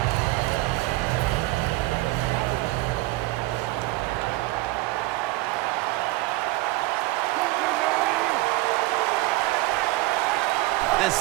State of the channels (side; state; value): left; quieter; 20.0 dB